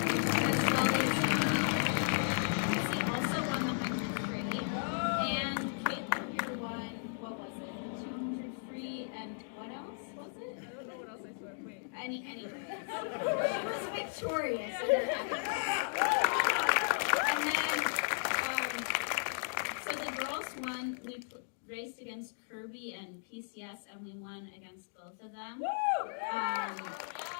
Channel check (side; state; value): right; silent; digital silence